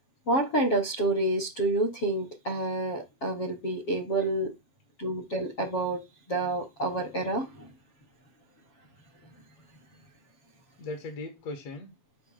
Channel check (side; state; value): right; late; 7.4 ms